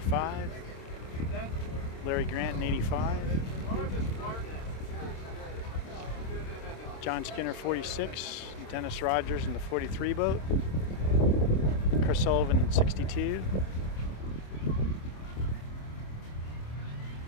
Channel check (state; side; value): late; right; 26 ms